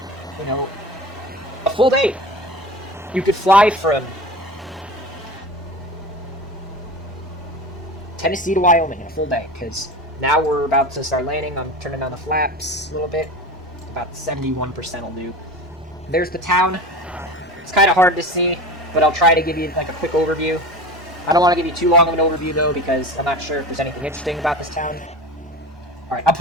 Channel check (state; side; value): normal; both; correlation 0.32